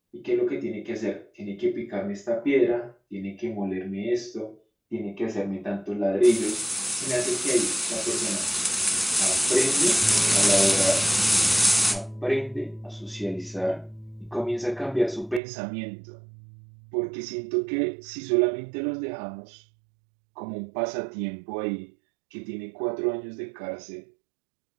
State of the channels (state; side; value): drops out; left; at 15.4 s